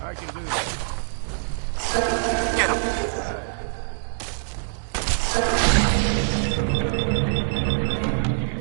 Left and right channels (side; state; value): left; silent; digital silence